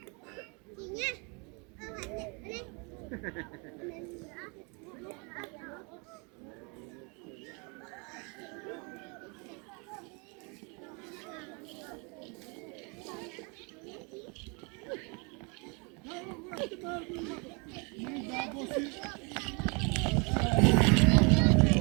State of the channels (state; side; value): quieter; left; 32.5 dB